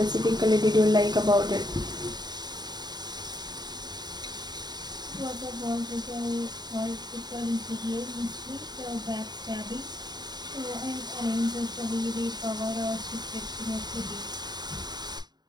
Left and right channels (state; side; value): late; left; 0.20 ms